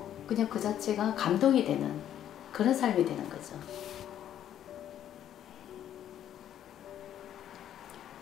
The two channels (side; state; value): right; quieter; 10.7 dB